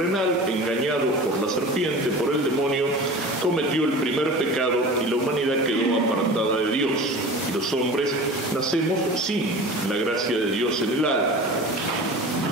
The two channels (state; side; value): normal; both; correlation 0.36